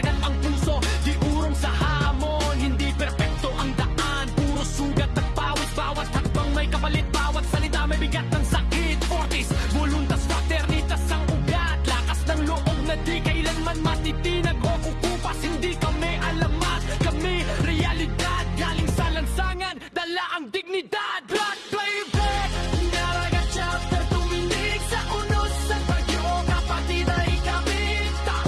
ang puso, di urong sa hamon. Hindi perpekto ang daan, puro sugat at pawis. Bawat hakbang may kapalit, bawat salita may bigat ng sakit. Fortis, voluntas, fraternitas ang ugat. Lakas ng loob na di kailanman matitinag o kukupas. Hindi kami alamat, kami realidad. Galing sa lansangan, dala ang dignidad. Blood playback, Mandaragat Chapter tuminig sa unos sa bagyo. Kapatid ay kami,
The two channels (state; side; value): identical; both; correlation 1.00